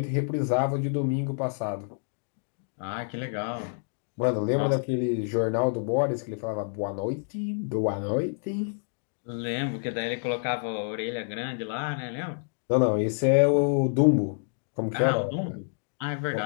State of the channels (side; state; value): right; silent; digital silence